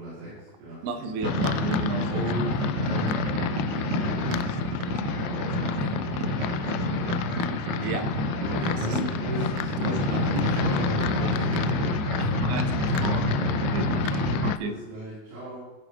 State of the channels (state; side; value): late; left; 28 ms